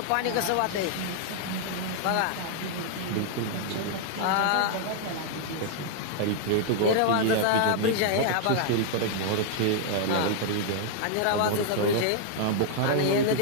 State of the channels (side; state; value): both; different; correlation 0.00